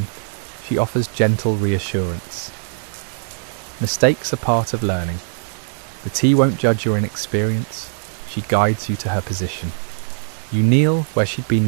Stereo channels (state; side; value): silent; left; 65 dB below the other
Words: she offers gentle reassurance. Mistakes are part of learning. The tea won't judge your inexperience. She guides you to her position. You kneel where she'd